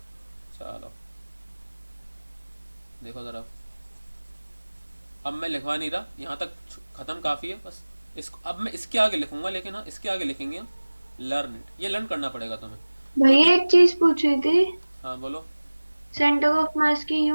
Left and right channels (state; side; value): inverted; both; correlation -1.00